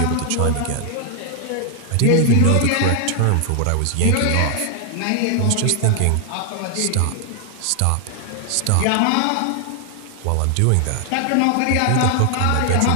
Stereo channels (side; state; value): both; different; correlation 0.00